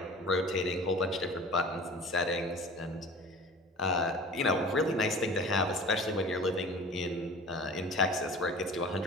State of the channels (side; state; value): both; normal; correlation 0.41